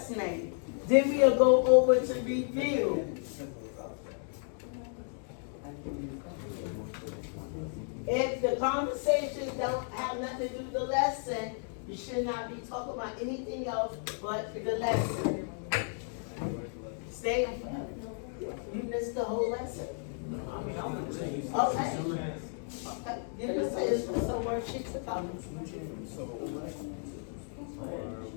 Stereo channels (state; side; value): silent; right; 56 dB below the other